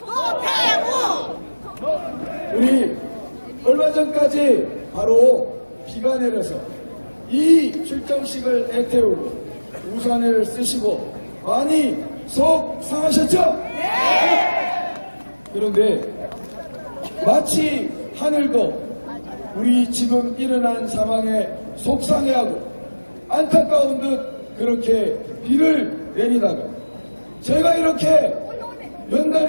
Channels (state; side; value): inverted; both; correlation -1.00